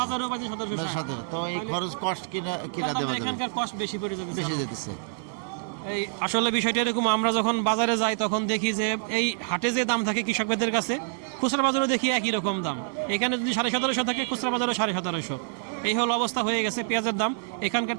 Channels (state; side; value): silent; left; 55 dB below the other